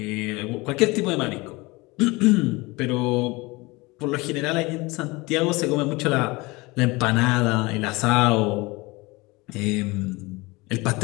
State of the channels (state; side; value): quieter; right; 23.6 dB